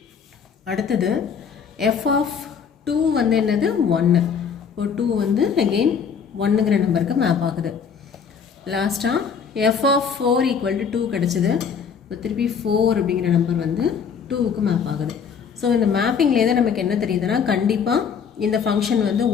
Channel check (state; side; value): quieter; right; 6.7 dB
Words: அடுத்தது f of 2 வந்து என்னது 1. இப்போ 2 வந்து அகெயின் 1ங்கிற நம்பருக்கு மேப் ஆகுது. லாஸ்ட்டாக f of 4 equal to 2 கிடச்சிது. இப்போ திருப்பி 4 அப்படிங்கிற நம்பர் வந்து 2க்கு மேப் ஆகுது. ஸோ இந்த மேப்பிங்லேருந்து நமக்கு என்ன தெரியுதுன்னா கண்டிப்பாக இந்த ஃபங்க்ஷன் வந்து